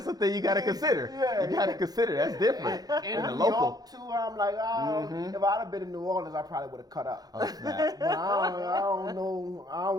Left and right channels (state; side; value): late; left; 0.19 ms